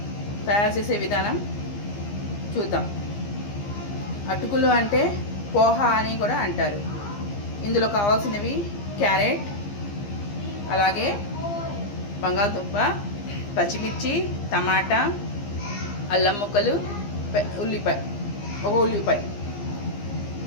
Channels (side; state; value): right; late; 15 ms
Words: తయారు చేసే విధానం చూద్దాం. అటుకులు అంటే పోహా అని కూడా అంటారు. ఇందులో కావాల్సినవి క్యారెట్, అలాగే బంగాళదుంప, పచ్చిమిర్చి, టమాటా, అల్లం ముక్కలు, ఉల్లిపాయ.